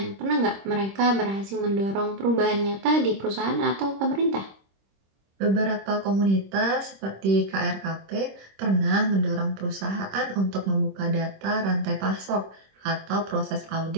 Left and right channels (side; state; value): left; late; 26 ms